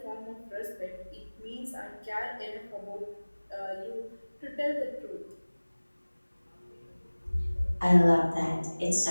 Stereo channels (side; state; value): both; inverted; correlation -1.00